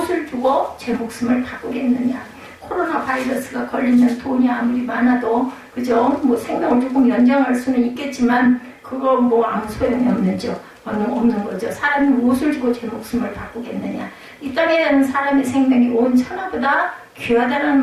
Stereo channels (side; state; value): both; identical; correlation 1.00